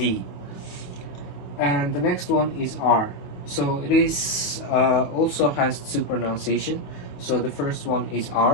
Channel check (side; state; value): right; late; 27 ms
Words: And the next one is R. So it is also has two pronunciation. So the first one is